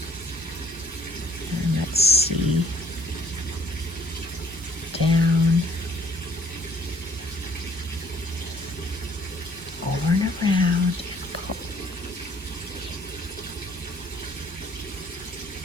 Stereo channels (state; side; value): normal; both; correlation 0.61